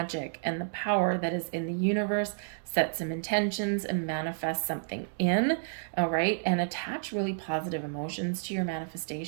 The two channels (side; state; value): left; silent; digital silence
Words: and the power that is in the universe, set some intentions and manifest something in, all right? And attach really positive emotions to your